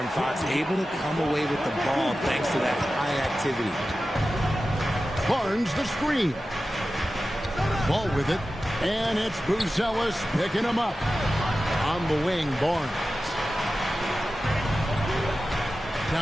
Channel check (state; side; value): normal; both; correlation 0.94